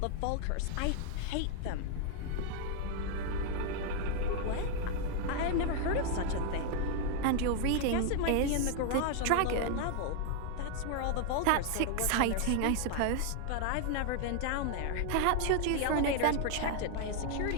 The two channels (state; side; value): different; both; correlation 0.00